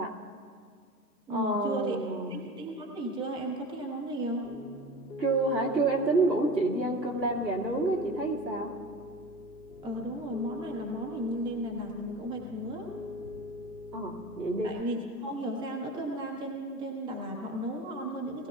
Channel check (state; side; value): normal; both; correlation 0.33